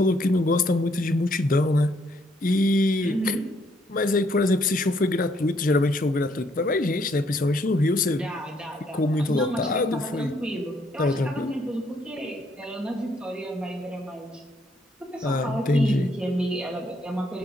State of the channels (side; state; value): both; normal; correlation 0.70